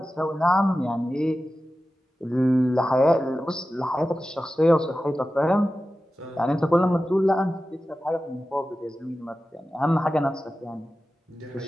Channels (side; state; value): both; normal; correlation 0.94